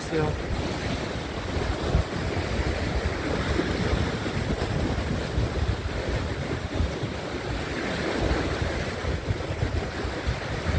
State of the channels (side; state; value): both; identical; correlation 1.00